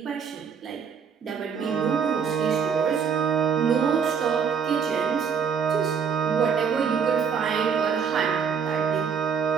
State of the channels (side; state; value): left; quieter; 6.7 dB